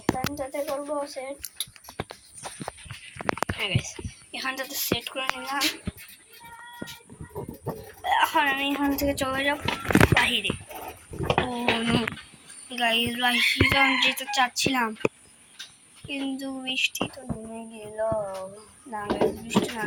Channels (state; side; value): identical; both; correlation 1.00